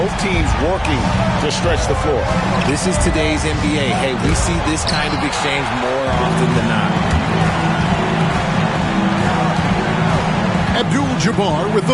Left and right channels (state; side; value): identical; both; correlation 1.00